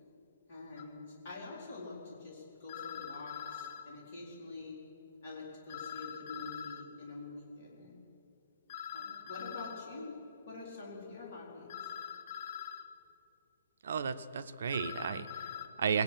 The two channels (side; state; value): both; inverted; correlation -0.66